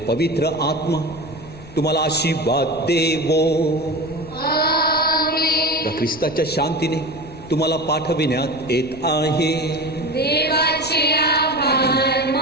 आत्मा तुम्हाला आशीर्वाद देवो. आमेन. ख्रिस्ताच्या शांतीने तुम्हाला पाठविण्यात येत आहे. देवाचे आभार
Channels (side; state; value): left; noise; rumble, 18 dB below the sound